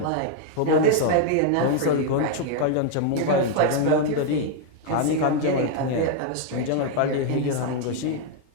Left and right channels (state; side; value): different; both; correlation 0.01